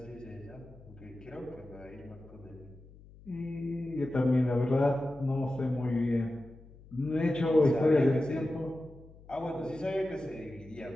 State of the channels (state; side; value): noise; left; hum, 21 dB below the sound